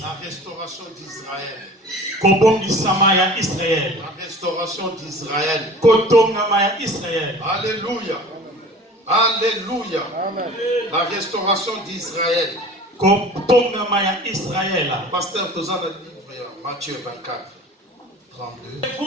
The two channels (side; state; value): both; normal; correlation 0.43